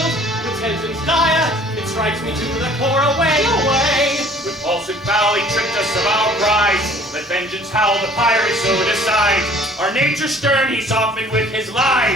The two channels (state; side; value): normal; both; correlation 0.53